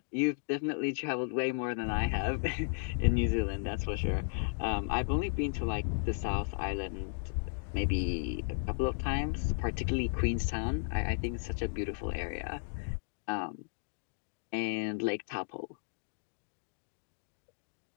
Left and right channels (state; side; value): silent; right; digital silence